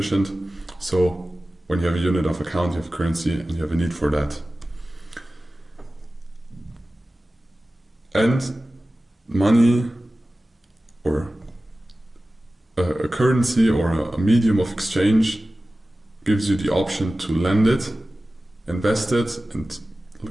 So when you have a unit of account, you have currency and you have a need for that. And money or a currency or a medium of exchange gives you the option to lend it, invest it, and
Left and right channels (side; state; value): both; normal; correlation 0.96